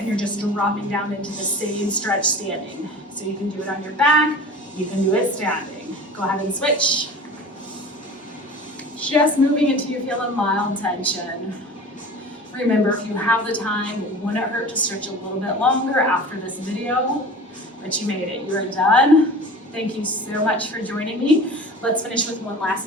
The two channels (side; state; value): both; normal; correlation 0.38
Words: you're just dropping down into the same stretch standing. So you can do it on your back, you can do it standing. Go ahead and switch. Just moving until you feel a mild tension. Remember, if you have the time, it wouldn't hurt to stretch a little bit longer after this video, but you made it. You're done. Thank you so much for joining me. Let's finish with one